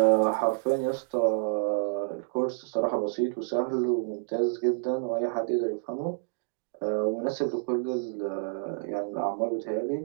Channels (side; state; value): left; silent; digital silence